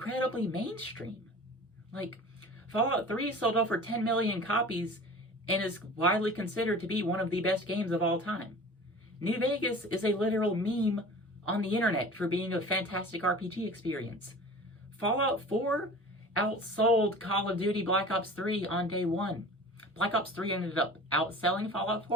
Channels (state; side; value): normal; both; correlation 0.40